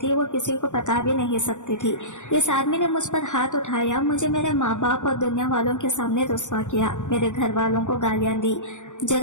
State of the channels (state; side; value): late; right; 0.85 ms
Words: वो किसी को पता भी नहीं सकती थी। इस आदमी ने मुझ पर हाथ उठाया, मुझे मेरे माँ बाप और दुनिया वालों के सामने रुस्वा किया, मेरे घर वालों को गालियां दी,